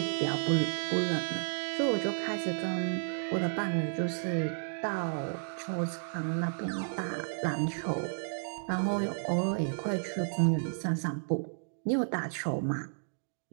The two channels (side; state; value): left; silent; digital silence